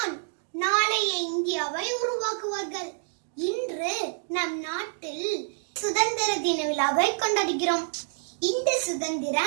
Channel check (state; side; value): silent; left; digital silence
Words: நாளைய இந்தியாவை உருவாக்குவார்கள். இன்று நம் நாட்டில் சுதந்திர தின விழாவை கொண்டாடுகிறோம். இந்த